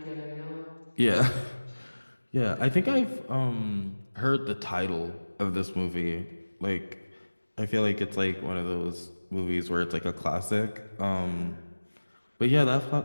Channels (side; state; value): both; inverted; correlation -1.00